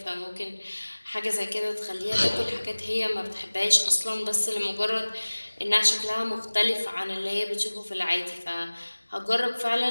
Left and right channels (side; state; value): both; inverted; correlation -1.00